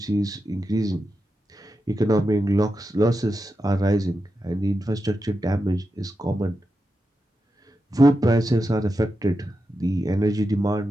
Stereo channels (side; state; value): both; normal; correlation 0.89